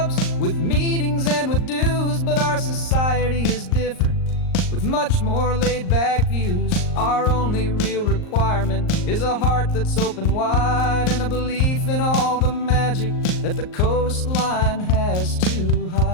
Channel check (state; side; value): late; right; 38 ms